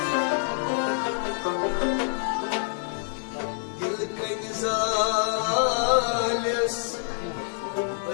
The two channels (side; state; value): right; silent; 60 dB below the other